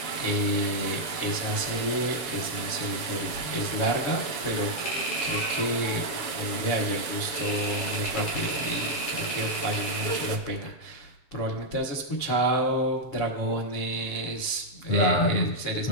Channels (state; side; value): late; right; 7.3 ms